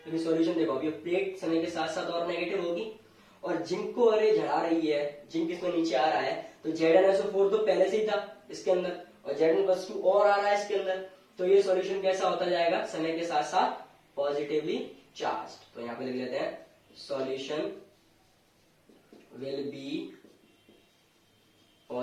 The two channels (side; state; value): both; identical; correlation 1.00